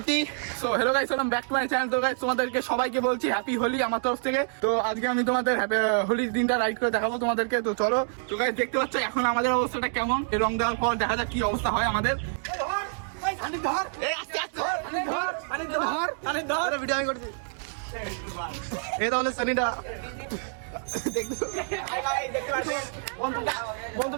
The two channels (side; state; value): left; silent; digital silence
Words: So hello guys, welcome back to my channel. তো গাইস তোমাদেরকে সবাইকে বলছি হ্যাপি হোলি আমার তরফ থেকে। তো আজকে আমি তোমাদের হোলির দিনটা রাইড করে দেখাবো তোমাদেরকে। তো চলো। তো গাইস দেখতে পাচ্ছ এখন আমাদের অবস্থাটা কেমন, এই রং দেওয়ার পর দেখা যাক কি অবস্থা হয় আমাদের। ধর এই আস্তে আস্তে ধর ভিডিও আমি করছি। এই তাহলে সানিটা